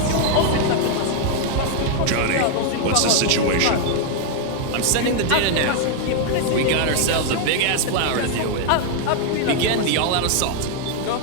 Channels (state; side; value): different; both; correlation 0.00